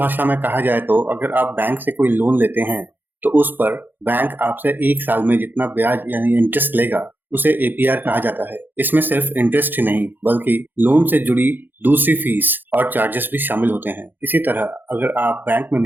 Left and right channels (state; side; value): late; left; 0.091 ms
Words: में कहा जाए तो अगर आप बैंक से कोई लोन लेते हैं तो उस पर बैंक आपसे एक साल में जितना ब्याज यानी इंटरेस्ट लेगा उसे एपीआर कहा जाता है। इसमें सिर्फ इंटरेस्ट ही नहीं बल्कि लोन से जुड़ी दूसरी फीस और चार्जेस भी शामिल होते हैं। इसी तरह अगर आप बैंक में